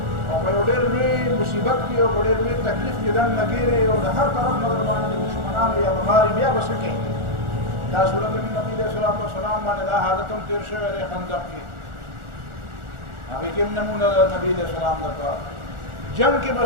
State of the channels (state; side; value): late; left; 1.4 ms